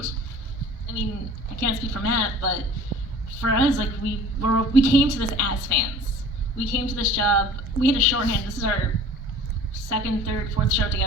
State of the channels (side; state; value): both; normal; correlation 0.45